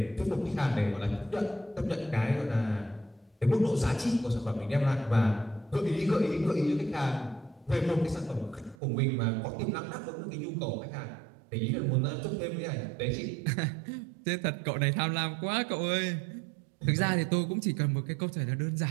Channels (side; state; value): left; drops out; at 8.8 s